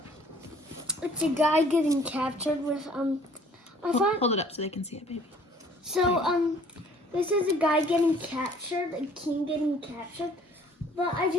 It's a guy getting captured with Hold it up so they can see it, baby. So this is a guy getting captured, a king getting captured. But I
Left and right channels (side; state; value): both; normal; correlation 0.56